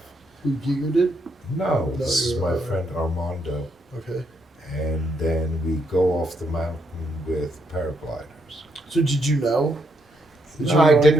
Who Giger did? No, No, this is you're, my friend Armando. Okay. And then we go off the mountain with paragliders. So did you know? Did No, I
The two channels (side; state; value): both; normal; correlation 0.76